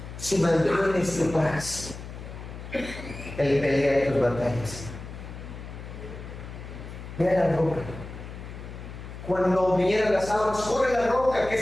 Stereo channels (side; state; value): left; noise; hum, 12 dB below the sound